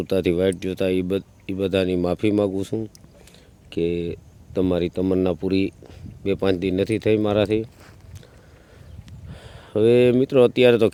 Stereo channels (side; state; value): both; identical; correlation 1.00